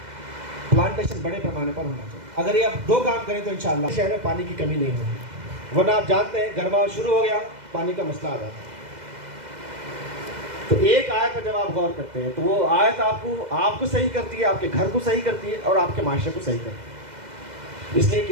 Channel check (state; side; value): late; left; 2.0 ms